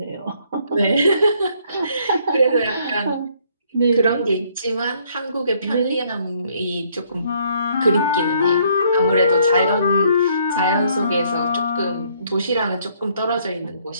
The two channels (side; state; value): both; inverted; correlation -0.66